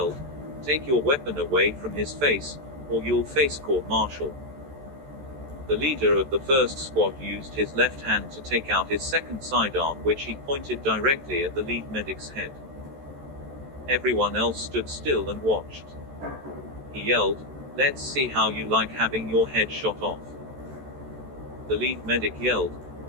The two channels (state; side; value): late; left; 14 ms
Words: "Take your weapon away from his face, or you'll face court-martial." The leader of the first squad used his left hand to take out his second sidearm, which he pointed directly at the lead medic's head. Everyone else stood still and watched. He yelled, "Let's see how you like having your head shot off." The lead medic yelled,